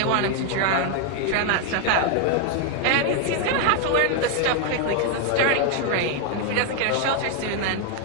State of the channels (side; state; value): both; different; correlation 0.01